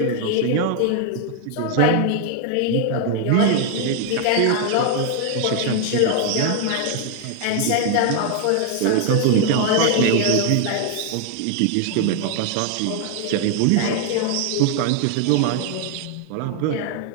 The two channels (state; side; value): different; both; correlation 0.00